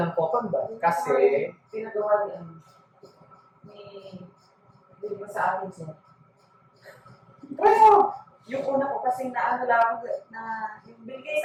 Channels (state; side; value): identical; both; correlation 1.00